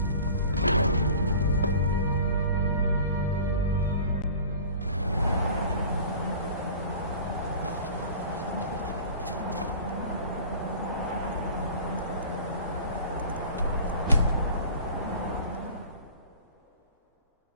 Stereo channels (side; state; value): both; inverted; correlation -0.42